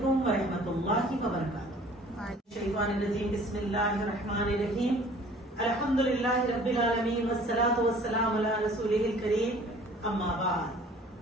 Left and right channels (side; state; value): both; normal; correlation 0.51